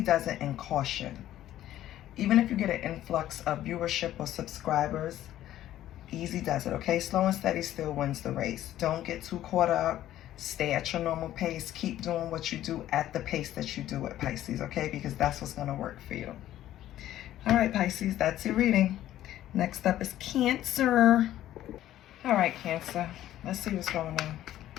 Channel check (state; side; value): quieter; right; 13.0 dB